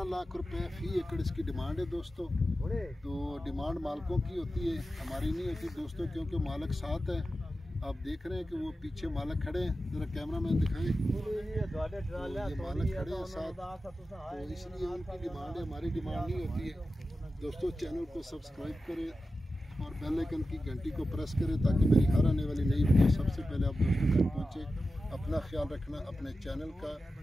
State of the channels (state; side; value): normal; both; correlation 0.92